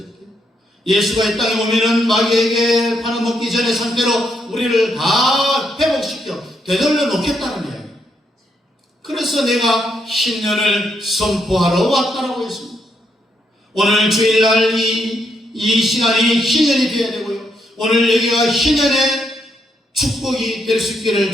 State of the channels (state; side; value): normal; both; correlation 0.77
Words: 때. 예수가 이 땅에 오면은 마귀에게 팔아먹기 전의 상태로 우리를 다 회복시켜 되돌려 놓겠다는 이야기. 그래서 내가 신년을 선포하러 왔다라고 했습니다. 오늘 주일날 이 시간이 희년이 되어야 되고요. 오늘 여기가 희년의 축복이 될 수 있기를